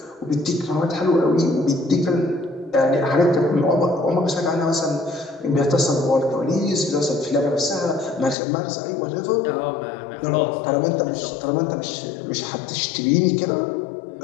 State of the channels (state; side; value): drops out; right; at 8.3 s